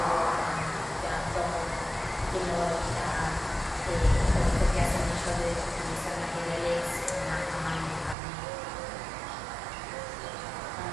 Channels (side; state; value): left; drops out; at 8.2 s